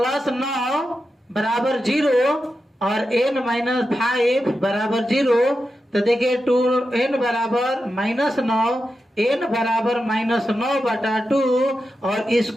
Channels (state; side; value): normal; both; correlation 0.90